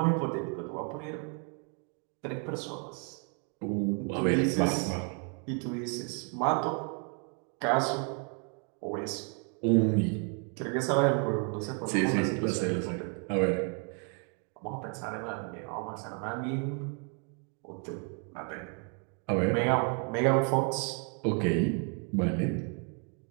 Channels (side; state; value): left; quieter; 38.8 dB